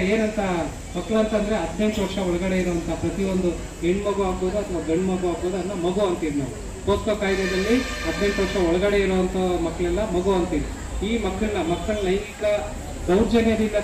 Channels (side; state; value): both; identical; correlation 1.00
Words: ಏನಂತ, ಮಕ್ಕಳು ಅಂತಂದ್ರೆ 18 ವರ್ಷ ಒಳಗಡೆ ಇರುವಂತ ಪ್ರತಿಯೊಂದು ಹೆಣ್ಮಗು ಆಗ್ಬೋದು ಅಥವಾ ಗಂಡು ಮಗು ಆಗ್ಬೋದು, ಅದನ್ನ ಮಗು ಅಂತೀವಿ ನಾವು. ಪೋಸ್ಕೋ ಕಾಯ್ದೆಯಲ್ಲಿ 18 ವರ್ಷ ಒಳಗಡೆ ಇರುವಂತ ಮಕ್ಕಳೆಲ್ಲ ಮಗು ಅಂತೀವಿ. ಈ ಮಕ್ಕಳ ಲೈಂಗಿಕ ದೌರ್ಜನ್ಯದಿಂದ